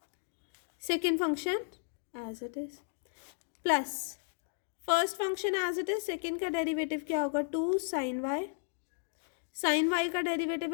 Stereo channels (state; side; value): silent; right; digital silence